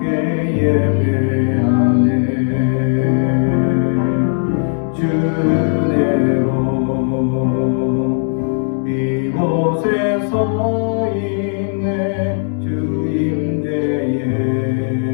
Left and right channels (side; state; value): right; silent; 61 dB below the other